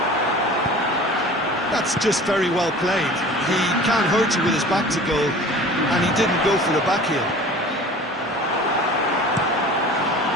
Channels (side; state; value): both; normal; correlation 0.42